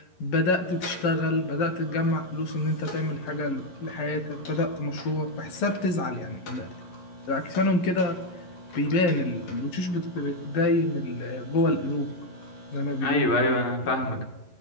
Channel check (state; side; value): late; right; 11 ms